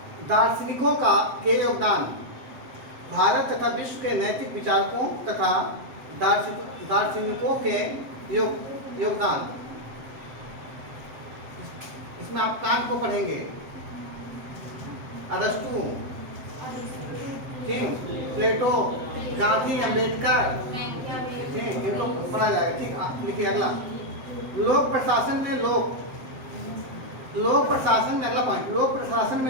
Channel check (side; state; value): left; late; 7.7 ms